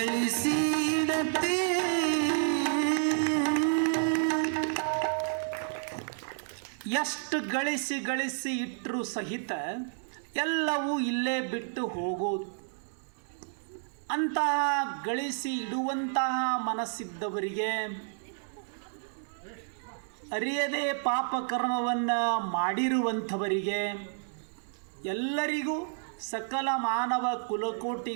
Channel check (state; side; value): silent; left; digital silence